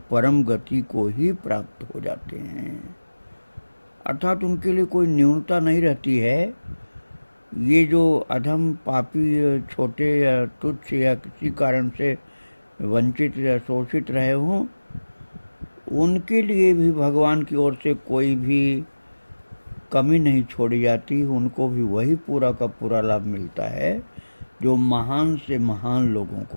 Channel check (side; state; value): both; inverted; correlation -1.00